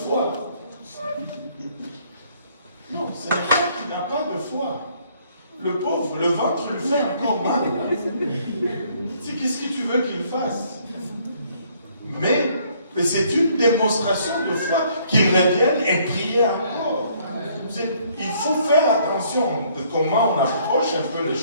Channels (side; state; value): both; inverted; correlation -0.64